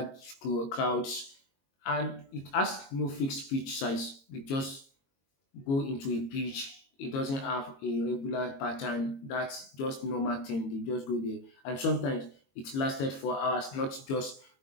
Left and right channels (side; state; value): right; late; 22 ms